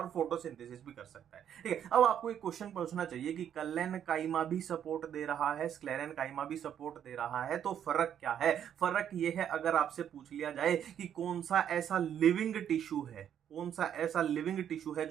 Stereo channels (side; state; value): left; quieter; 9.4 dB